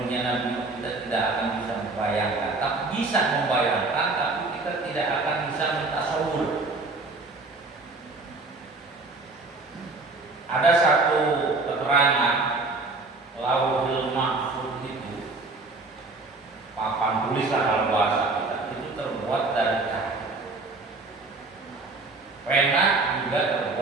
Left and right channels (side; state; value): left; quieter; 3.5 dB